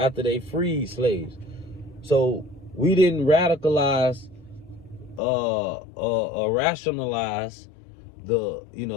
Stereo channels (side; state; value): right; drops out; at 5.2 s